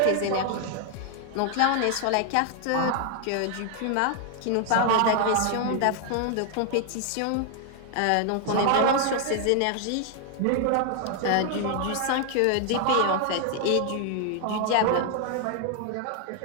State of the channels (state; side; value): different; both; correlation 0.00